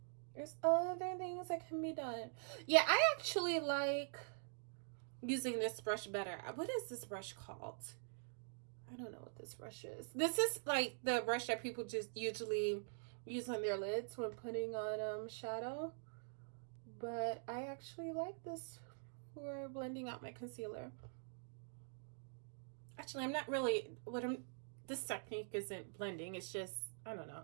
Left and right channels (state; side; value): silent; left; digital silence